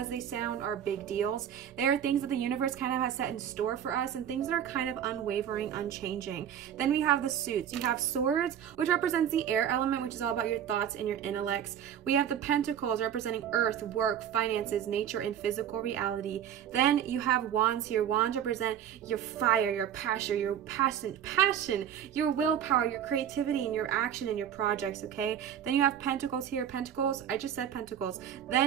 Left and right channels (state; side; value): quieter; left; 9.6 dB